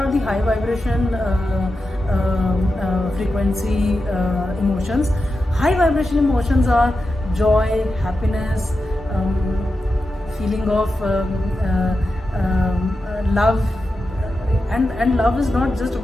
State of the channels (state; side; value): normal; both; correlation 0.90